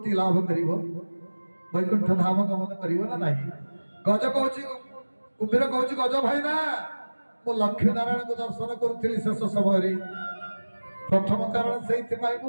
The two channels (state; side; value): inverted; both; correlation -1.00